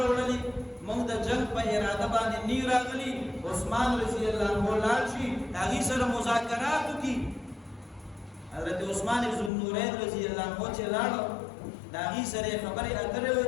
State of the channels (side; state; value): right; drops out; at 9.5 s